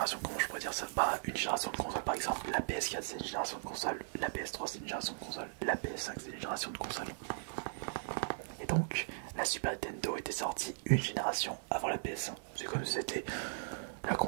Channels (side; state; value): left; silent; digital silence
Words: comment je pourrais dire ça? Bah, une génération de console, par exemple, la PS4 c'est une génération de console, la PS3 c'est une génération de console, la PS5 c'est une génération de console. Et donc, la Super Nintendo était sortie une génération avant la PS1. C'est comme si c'était la